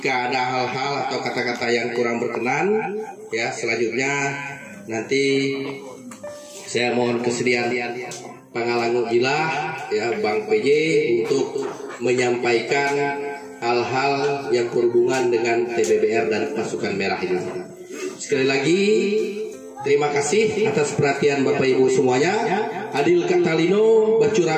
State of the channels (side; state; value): both; identical; correlation 1.00